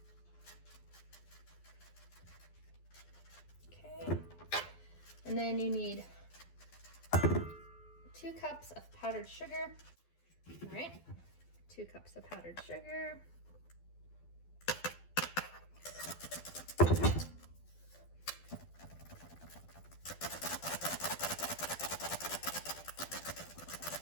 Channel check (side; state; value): right; late; 12 ms